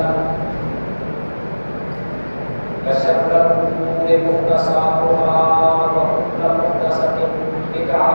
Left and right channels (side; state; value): both; inverted; correlation -1.00